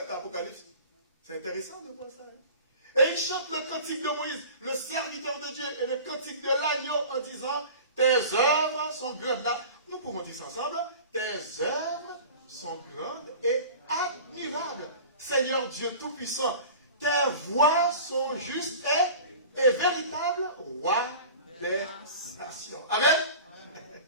dans l'Apocalypse. C'est intéressant de voir ça. Hein? Et il chante le cantique de Moïse, le serviteur de Dieu, et le cantique de l'agneau en disant, tes œuvres sont grandes. Là, nous pouvons dire ça ensemble. Tes œuvres sont grandes et admirables. Seigneur Dieu Tout-Puissant, tes voies sont justes et véritables, roi des nations. Amen.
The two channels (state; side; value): inverted; both; correlation -0.38